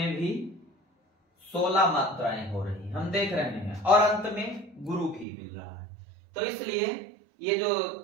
भी 16 मात्राएं हो रही हैं, हम देख रहे हैं। और अंत में गुरु भी मिल रहा है। तो इसलिए ये जो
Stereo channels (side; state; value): left; drops out; at 5.2 s